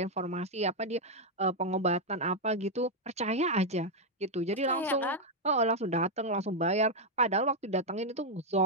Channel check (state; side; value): normal; both; correlation 0.00